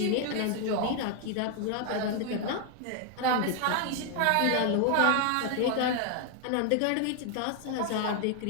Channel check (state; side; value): different; both; correlation 0.00